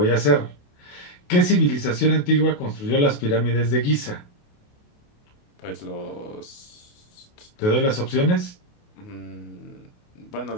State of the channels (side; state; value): right; late; 28 ms